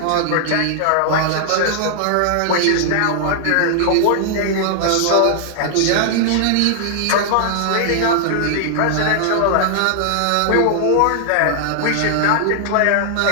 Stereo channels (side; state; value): both; different; correlation -0.01